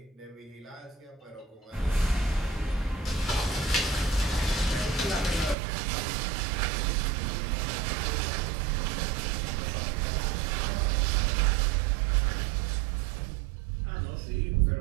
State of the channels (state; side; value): drops out; left; at 5.6 s